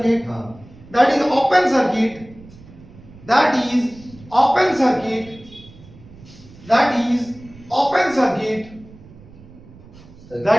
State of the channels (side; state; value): right; noise; rumble, 21 dB below the sound